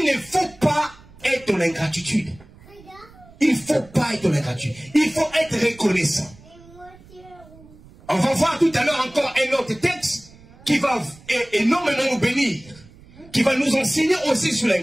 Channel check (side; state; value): right; noise; rumble, 24 dB below the sound